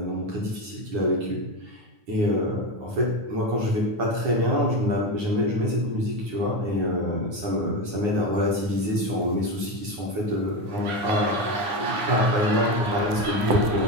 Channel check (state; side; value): late; left; 9.6 ms